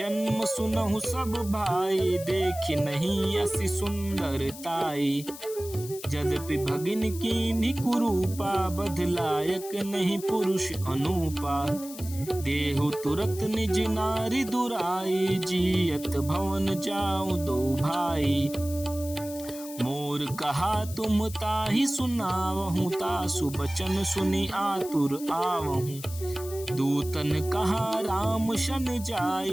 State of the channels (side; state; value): left; noise; hiss, 14 dB below the sound